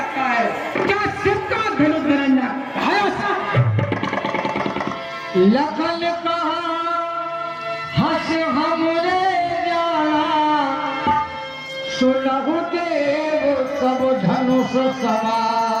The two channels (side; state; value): both; identical; correlation 1.00